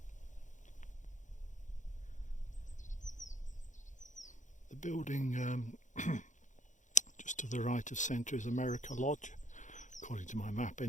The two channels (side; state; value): right; late; 0.36 ms